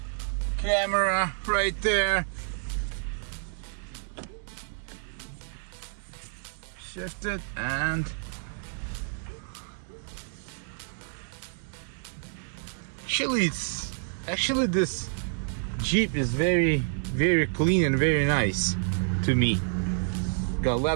camera right there. Shift it and actually this Jeep is very clean and very nice to me. Got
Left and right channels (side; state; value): left; silent; digital silence